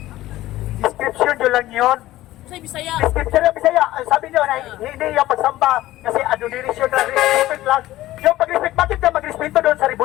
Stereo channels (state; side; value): quieter; right; 15.9 dB